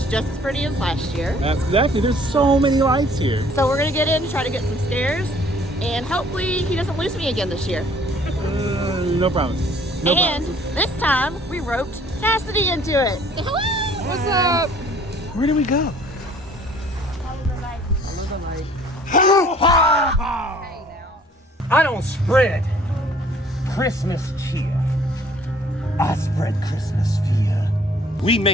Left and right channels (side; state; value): both; normal; correlation 0.56